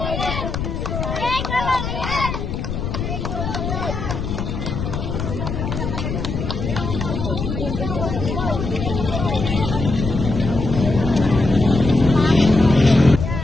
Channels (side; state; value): left; noise; rumble, 4 dB below the sound